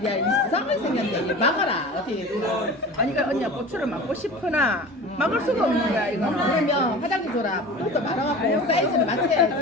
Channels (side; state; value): both; normal; correlation 0.37